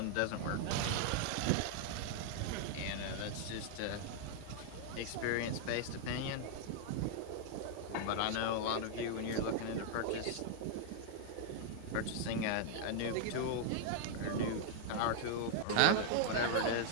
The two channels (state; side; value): different; both; correlation 0.00